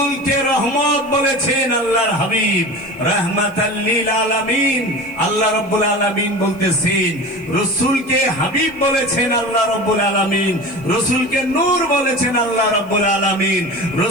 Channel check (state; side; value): noise; left; hiss, 28 dB below the sound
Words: রহমত বলেছেন আল্লাহর হাবিব, রাহমাতাল লিল আলামিন। আল্লাহ রাব্বুল আলামিন বলতেছেন, রসুলকে হাবিব বলেছেন আল্লাহ রাব্বুল আলামিন, রসুলকে নূর বলেছেন আল্লাহ রাব্বুল আলামিন,